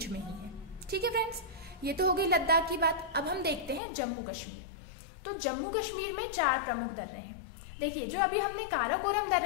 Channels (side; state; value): right; drops out; at 3.8 s